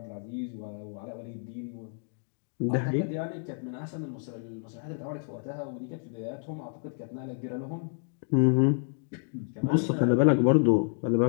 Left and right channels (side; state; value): right; silent; 57 dB below the other